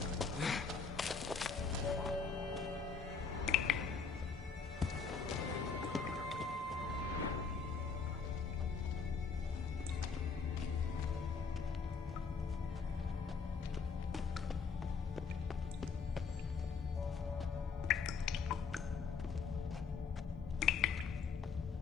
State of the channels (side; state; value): right; quieter; 5.3 dB